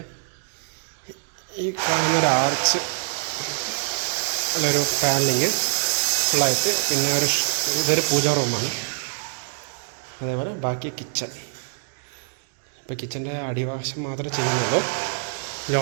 ഈ കാണുന്നൊരു ആർച്ച് അല്ലൊരു പാനലിങ് ഫുള്ളായിട്ട്, പിന്നെ ഇതൊരു പൂജാ റൂമാണ്. അതേപോലെ ബാക്കി കിച്ചൺ. ഇപ്പോൾ കിച്ചൻ്റെ അടിവശം മാത്രമേ ചെയ്യുന്നുള്ളൂ.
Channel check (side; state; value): left; silent; digital silence